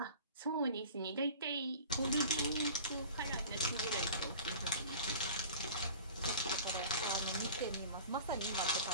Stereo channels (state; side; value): inverted; both; correlation -0.41